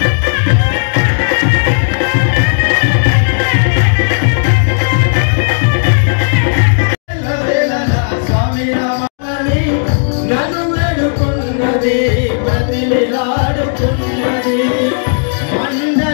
నన్ను వేడుకున్నది ప్రతిలాడుకున్నది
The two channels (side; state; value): right; silent; digital silence